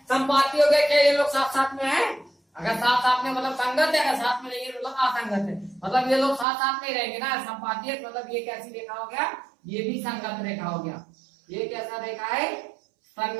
संपाती हो गया क्या, ये लोग साथ साथ में है, अगर साथ साथ में मतलब संगत है, अगर साथ में नहीं है मतलब असंगत है, मतलब ये लोग साथ साथ में रहेंगे ना। संपाती है मतलब ये कैसी रेखा हो गया, ये भी संगत रेखा हो गया। ये कैसा रेखा है,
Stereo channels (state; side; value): drops out; left; at 6.5 s